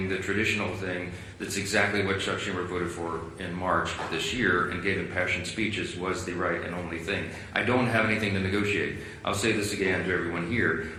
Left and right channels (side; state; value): both; identical; correlation 1.00